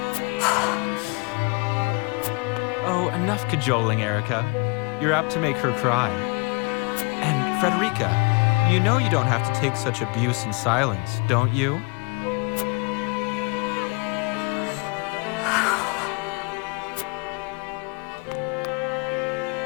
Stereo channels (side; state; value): right; quieter; 30.9 dB